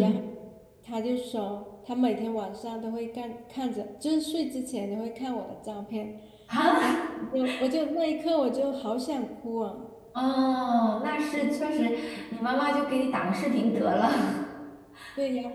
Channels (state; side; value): identical; both; correlation 1.00